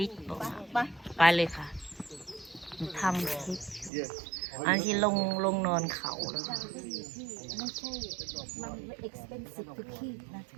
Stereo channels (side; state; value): left; drops out; at 3.9 s